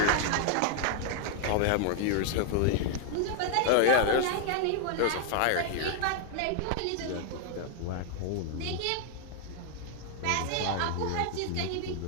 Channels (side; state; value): both; different; correlation 0.00